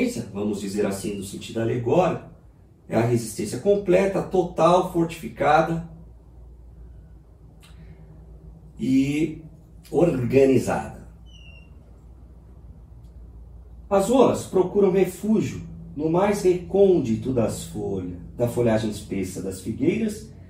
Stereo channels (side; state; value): both; identical; correlation 1.00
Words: vamos dizer assim, no sentido alegórico, é a resistência completa, total, fortificada e organizada. As rolas procuram refúgio no mais recôndito da folhagem espessa das figueiras